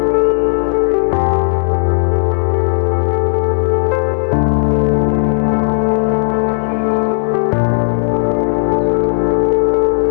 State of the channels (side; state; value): right; silent; digital silence